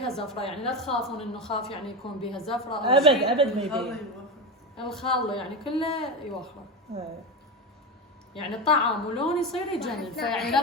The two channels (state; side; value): normal; both; correlation 0.18